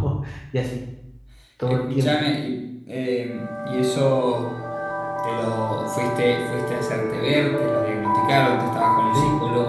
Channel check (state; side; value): identical; both; correlation 1.00